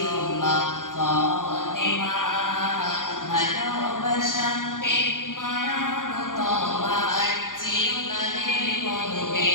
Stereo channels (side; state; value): right; late; 0.89 ms